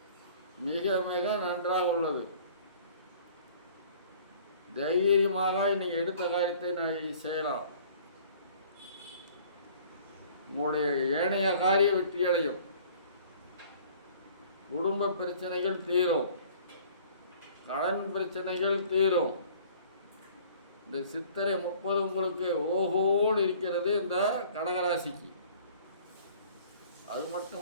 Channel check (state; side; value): inverted; both; correlation -0.51